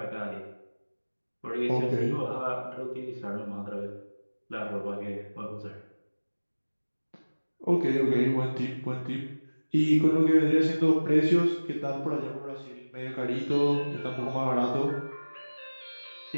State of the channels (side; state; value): both; inverted; correlation -1.00